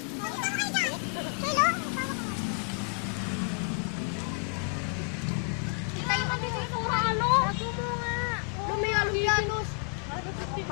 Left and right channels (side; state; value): right; quieter; 39.5 dB